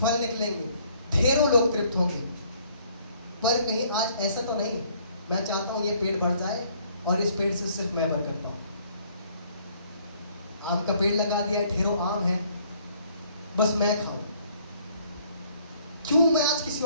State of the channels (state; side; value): inverted; both; correlation -0.62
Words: निकलेंगे, ढेरों लोग तृप्त होंगे। पर कहीं आज ऐसा तो नहीं, मैं चाहता हूँ ये पेड़ बढ़ जाए और इस पेड़ से सिर्फ मैं बरकत पाऊँ। आम का पेड़ लगा दिया है, ढेरों आम है, बस मैं खाऊं, क्यों मैं आज किसी